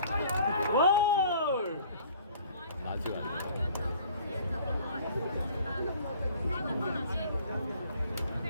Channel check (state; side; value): inverted; both; correlation -0.52